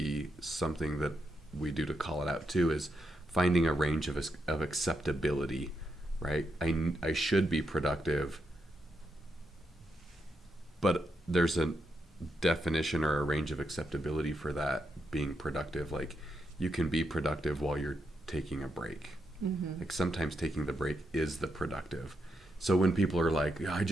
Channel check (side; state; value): both; normal; correlation 0.82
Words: something that we do to call it out too, is finding a range of acceptability, right? I should be productive, but there's a definition or a range of acceptability for that being productive. Like, you can be productive while you're taking a break. Mm-hmm. Like, sometimes taking the break is the productive. So when people are like, I